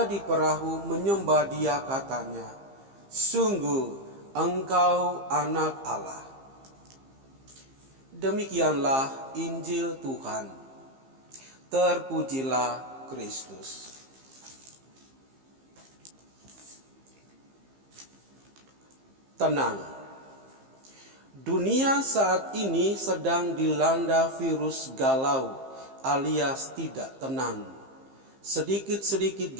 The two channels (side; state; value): left; late; 15 ms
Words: di perahu menyembah dia, katanya, "Sungguh Engkau anak Allah." Demikianlah Injil Tuhan. Terpujilah Kristus. Tenang. Dunia saat ini sedang dilanda virus galau alias tidak tenang. Sedikit-sedikit